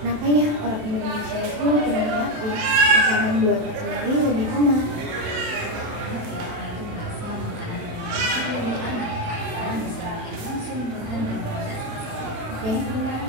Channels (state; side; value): late; left; 27 ms